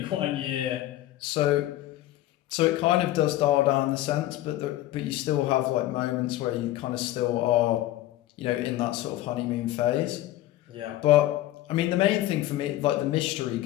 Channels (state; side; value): quieter; right; 15.0 dB